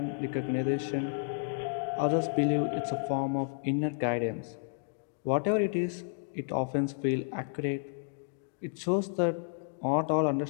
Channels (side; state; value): right; silent; digital silence